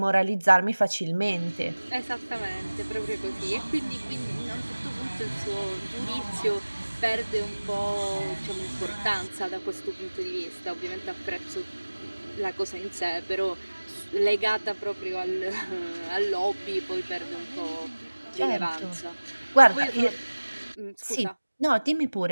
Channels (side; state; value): both; inverted; correlation -1.00